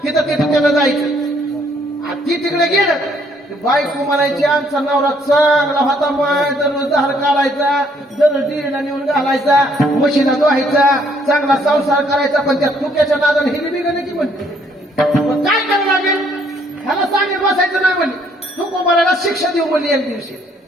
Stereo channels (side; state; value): both; normal; correlation 0.66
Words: तिथं तिथं त्याला जायचं. आणि ती तिकडे गेलं बायको म्हणायची आमचा नवरा चांगला होता. माय दररोज धार काढायचा. दररोज डिरीला नेऊन घालायचा. म्हशीला धुवायचा. चांगला संसार करायचा. पण त्या तुक्याच्या नादाने हिली बिघडली की म्हणते काय करावं लागेल. ह्याला सांगेल बसायचं नाही म्हणली. तुकोबाराला शिक्षा देऊ म्हणली एक दिवशी.